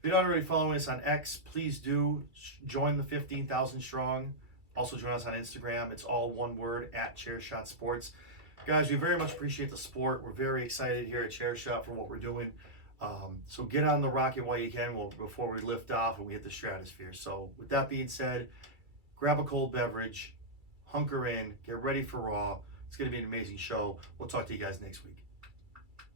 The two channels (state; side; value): late; left; 2.2 ms